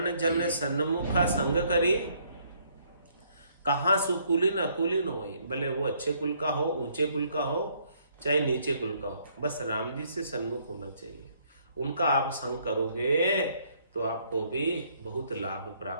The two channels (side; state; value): both; inverted; correlation -0.67